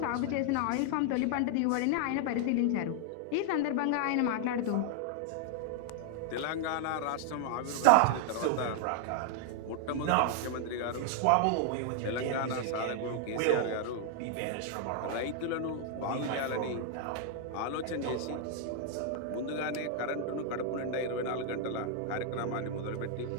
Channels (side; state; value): both; different; correlation 0.00